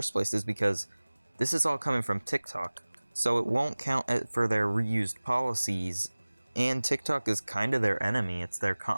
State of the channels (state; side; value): inverted; both; correlation -1.00